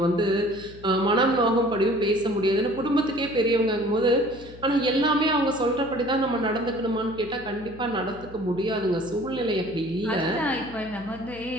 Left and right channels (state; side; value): noise; left; hum, 18 dB below the sound